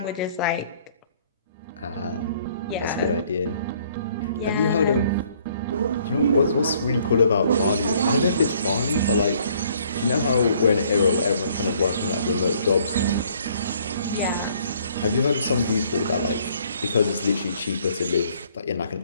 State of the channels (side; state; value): both; inverted; correlation -0.62